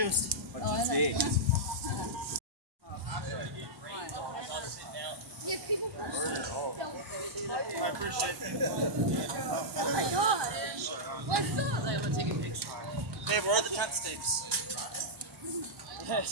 But it's big. Yeah, people... I appreciate it. Oh my gosh. What's up? I'm gonna take a picture. Babe, where are the tent stakes? I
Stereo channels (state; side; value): late; left; 1.1 ms